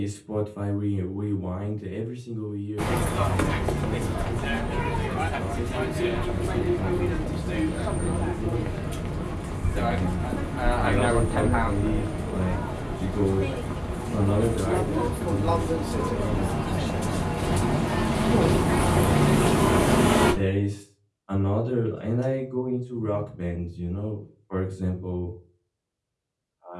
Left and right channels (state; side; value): identical; both; correlation 1.00